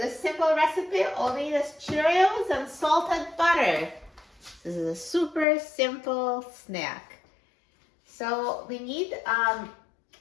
simple recipe, all we need is Cheerios and salted butter. This is a super simple snack. So we need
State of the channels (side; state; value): right; drops out; at 5.5 s